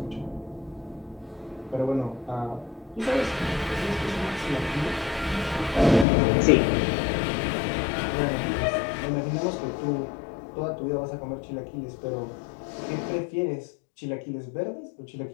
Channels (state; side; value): drops out; right; at 6.1 s